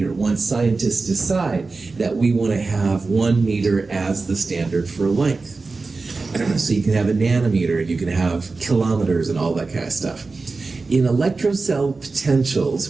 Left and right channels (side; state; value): left; quieter; 3.9 dB